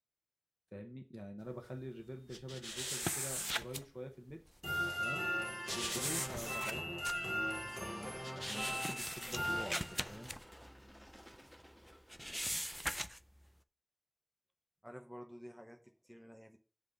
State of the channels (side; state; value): both; identical; correlation 1.00